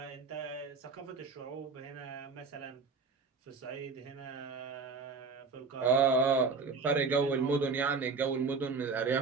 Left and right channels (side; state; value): left; quieter; 4.6 dB